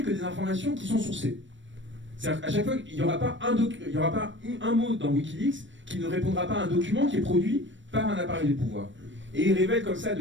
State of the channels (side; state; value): left; late; 0.54 ms